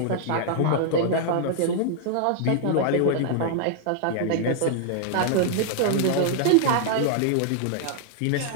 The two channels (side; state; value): both; different; correlation -0.01